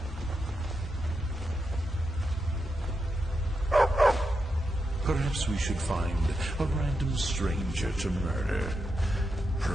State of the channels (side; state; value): both; normal; correlation 0.86